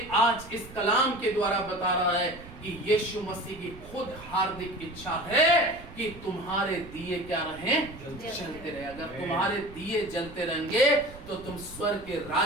आज इस कलाम के द्वारा बता रहा है कि यीशु मसीह की खुद हार्दिक इच्छा है कि तुम्हारे दिए क्या रहें, जलते रहे। अगर तुम्हारे दिए जलते रहेंगे तो तुम स्वर्ग के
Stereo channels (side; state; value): right; noise; rumble, 17 dB below the sound